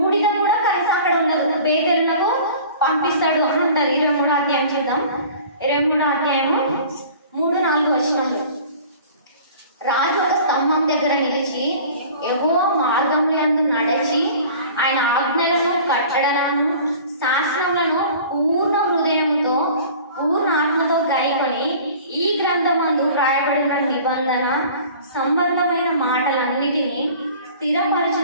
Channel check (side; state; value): both; inverted; correlation -0.44